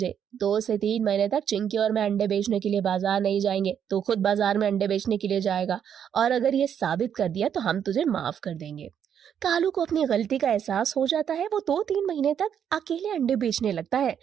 2 से 3 महीने तक चिंकी और मैं अंडे बेचने के लिए बाजार नहीं जाएंगे। तो खुद बाजार में अंडे बेचने के लिए जाएगा और अगर ये साबित कर दिया तो हम तुझे माफ कर देंगे। कालू को अपनी गलती का एहसास हो जाता है। वो 2-3 महीने तक अकेले अंडे बेचने लगता है।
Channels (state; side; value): quieter; left; 8.6 dB